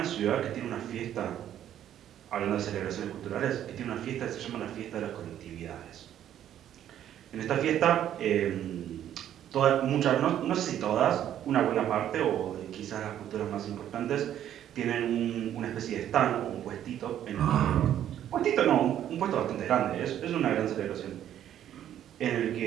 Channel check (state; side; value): quieter; left; 10.9 dB